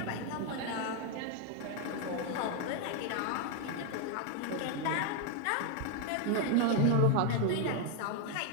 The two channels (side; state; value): both; different; correlation 0.01